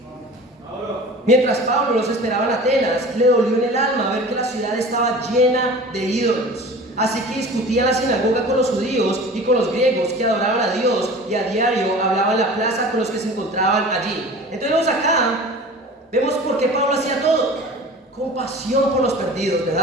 Mientras Pablo los esperaba en Atenas, le dolió en el alma ver que la ciudad estaba llena de ídolos. Así que discutía en la sinagoga con los judíos y con los griegos que adoraban a Dios, y a diario hablaba en la plaza con los que se encontraban allí. Entonces vemos acá, vemos por qué Pablo hacía todo. Compasión por los perdidos,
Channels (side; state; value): both; normal; correlation 0.39